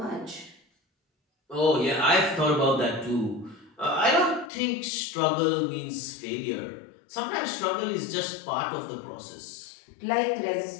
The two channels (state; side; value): drops out; right; at 4.5 s